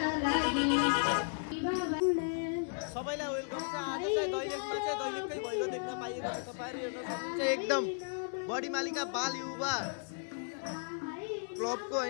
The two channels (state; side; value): silent; right; 55 dB below the other